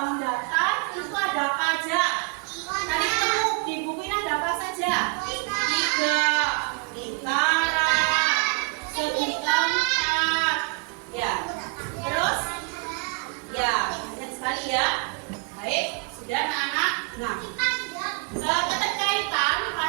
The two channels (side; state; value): left; quieter; 30.9 dB